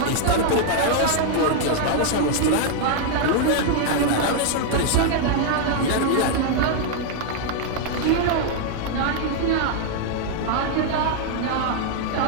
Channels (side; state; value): both; different; correlation 0.00